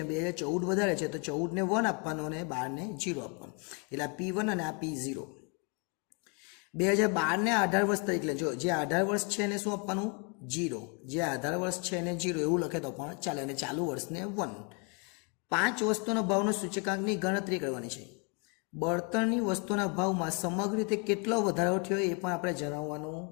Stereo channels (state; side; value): quieter; right; 35.4 dB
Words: 2014 વધારે છે તો 14ને 1 આપવાનું અને 12ને 0 આપવાનું. એટલે આ P1 અને આ P0. 2012ને આધાર વર્ષ તરીકે લેજો. જે આધાર વર્ષ છે એને શું આપવાનું? 0. જે આધાર વર્ષ છે એને 0 એવું લખે તો પણ ચાલે, અને ચાલુ વર્ષને 1. 5 વસ્તુનો ભાવનો સૂચકાંકની ગણતરી કરવાની છે. બળતણની વસ્તુના ભાવમાં સમગ્ર રીતે કેટલો વધારો થયો એ પણ આપણે જણાવવાનું